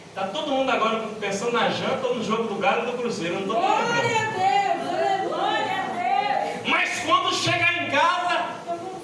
Está todo mundo agora pensando na janta ou no jogo do Galo e do Cruzeiro. Eu não estou Glória a Deus. Glória a Deus. Mas quando chegar em casa,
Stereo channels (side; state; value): both; identical; correlation 1.00